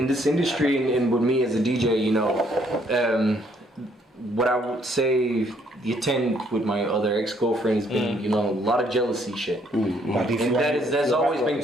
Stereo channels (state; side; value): normal; both; correlation 0.67